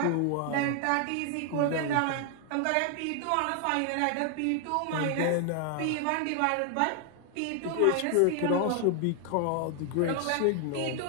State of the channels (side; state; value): both; different; correlation 0.00